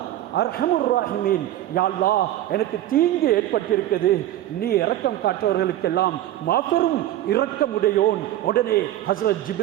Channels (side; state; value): left; quieter; 13.4 dB